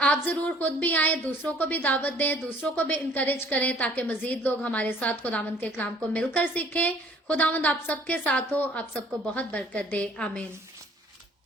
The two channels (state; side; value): normal; both; correlation 0.56